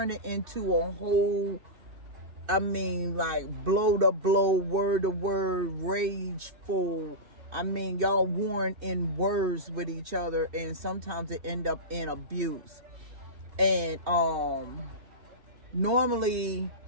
it into a whole, like blow to blow, word to word, rageful. Y'all warring in words with each other, and sometimes it end up in abuse. And normally,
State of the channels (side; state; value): left; late; 2.5 ms